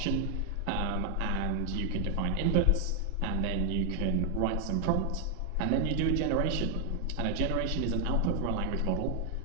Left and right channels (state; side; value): normal; both; correlation 0.01